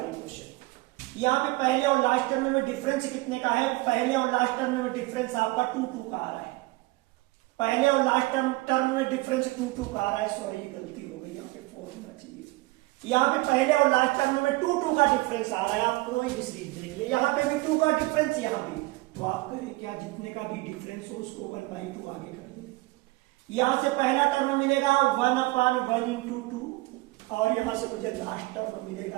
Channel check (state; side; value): quieter; left; 21.6 dB